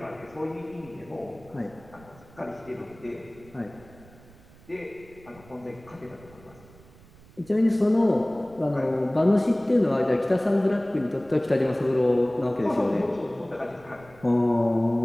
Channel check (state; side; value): noise; right; rumble, 24 dB below the sound